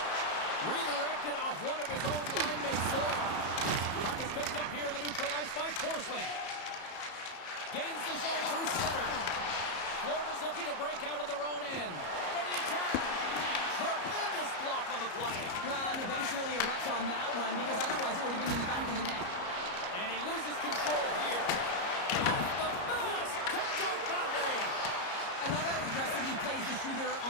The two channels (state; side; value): late; right; 34 ms